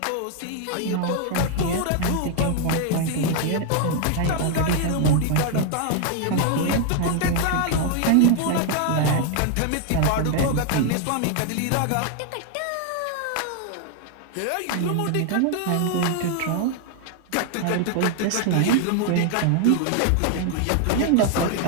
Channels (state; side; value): different; both; correlation 0.00